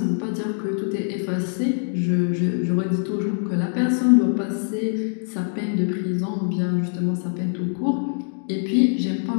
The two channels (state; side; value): silent; right; 63 dB below the other